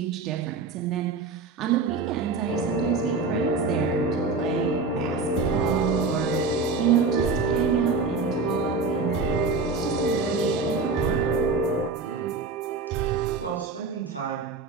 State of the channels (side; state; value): left; quieter; 4.2 dB